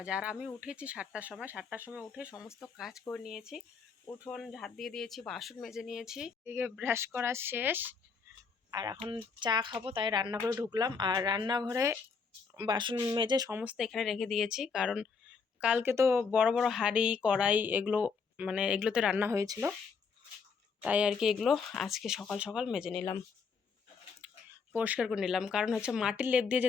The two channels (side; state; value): right; quieter; 5.5 dB